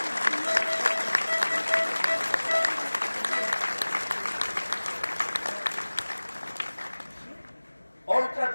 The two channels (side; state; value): both; inverted; correlation -1.00